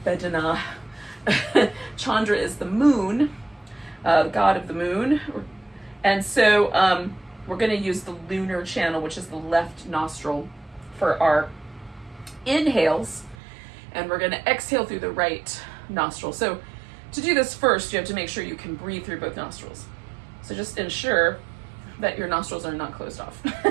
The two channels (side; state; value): left; drops out; at 13.4 s